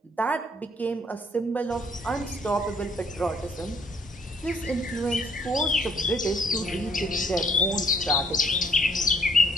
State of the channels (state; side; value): normal; both; correlation 0.63